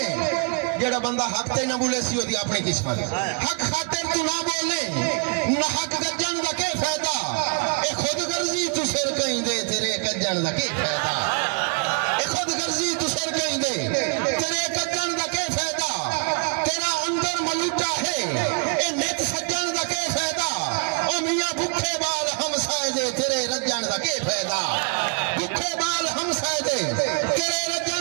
जेड़ा बंदा हक ते ना बोले सी ओदी अपनी किस्मत हक खातिर तू ना बोले ना हक गजन दा के फायदा ए खुद गर्जी तू सिर कहीं दे तेरे गजन दा के फायदा ए खुद गर्जी तू सिर कहीं दे तेरे गजन दा के फायदा तेरा अंदर मलूटा है ए नित सज्जन दा के फायदा ओ मियां भूखे बाल हम साए दे तेरे रजन दा के फायदा भूखे बाल हम साए दे तेरे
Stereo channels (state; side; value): quieter; left; 37.3 dB